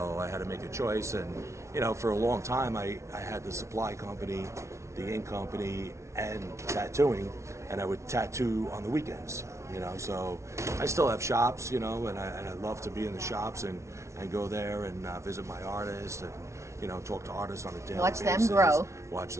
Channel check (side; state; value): left; late; 0.13 ms